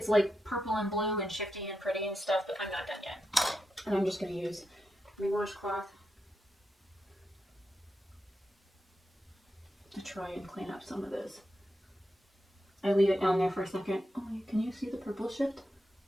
like purple and blue and shifty and pretty and stuff, but I'm not done yet. And I'm just going to use my washcloth to try and clean up some of this. I leave it down there for a second. Oh, can you see the purple shift?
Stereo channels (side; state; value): both; normal; correlation 0.86